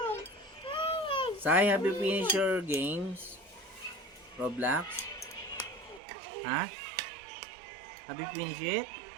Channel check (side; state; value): left; drops out; at 6.0 s